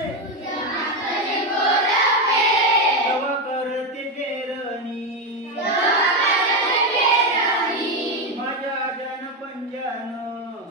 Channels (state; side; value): normal; both; correlation 0.10